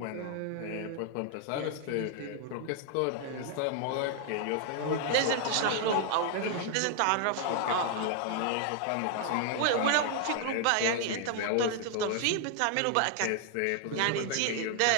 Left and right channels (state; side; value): different; both; correlation 0.00